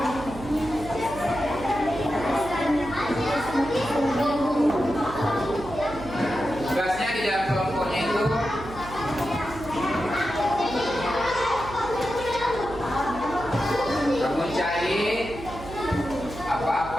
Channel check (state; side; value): noise; right; hum, 13 dB below the sound